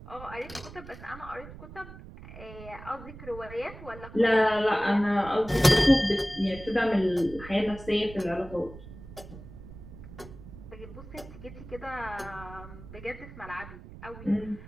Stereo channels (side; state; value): right; noise; rumble, 15 dB below the sound